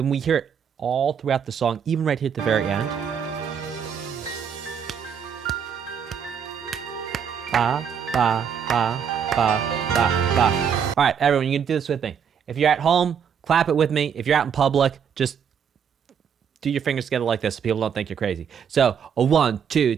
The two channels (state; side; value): quieter; left; 7.5 dB